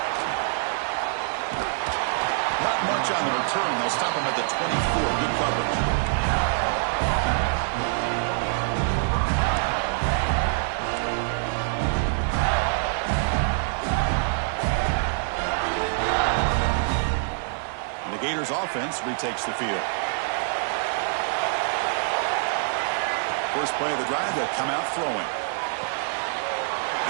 Not much on the return. They'll stop him at the 24. Good coverage. And the Gators offense retakes the field. First play of the drive, they'll come out throwing.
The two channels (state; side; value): silent; left; digital silence